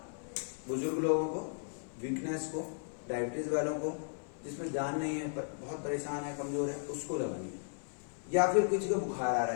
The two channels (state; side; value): silent; right; 54 dB below the other